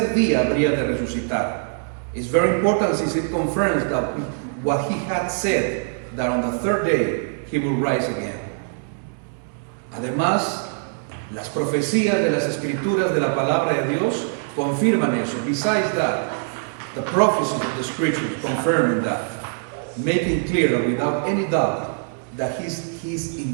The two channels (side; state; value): left; silent; digital silence